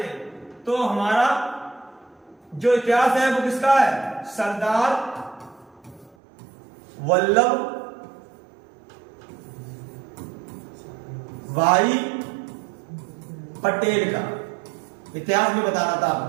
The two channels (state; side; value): drops out; left; at 6.2 s